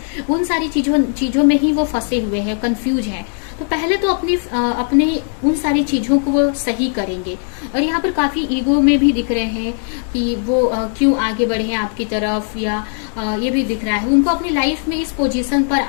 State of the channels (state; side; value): silent; right; 56 dB below the other